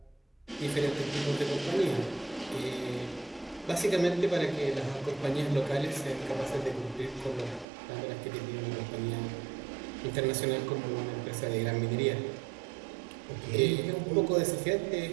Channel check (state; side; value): drops out; left; at 7.7 s